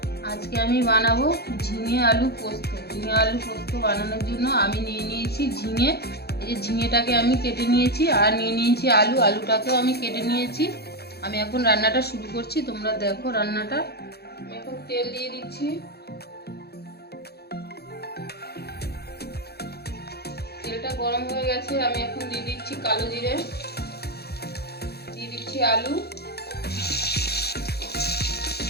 আজকে আমি বানাবো ঝিঙে আলু পোস্ত। ঝিঙে আলু পোস্ত বানানোর জন্য আমি নিয়ে নিয়েছি ঝিঙে। এই যে ঝিঙেটাকে আমি কেটে নিয়েছি, আর নিয়ে নিয়েছি আলু। আলুটাকেও আমি কেটে নিয়েছি। আমি এখন রান্নাটা শুরু করছি, তোমরা দেখো রান্নাটা। আমি এখন তেল দিয়ে দিচ্ছি। তেলটা গরম হয়ে গেছে, আমি এখন দিয়ে দিচ্ছি কালো জিরে, দিয়ে দিচ্ছি আলু,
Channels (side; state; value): right; late; 0.47 ms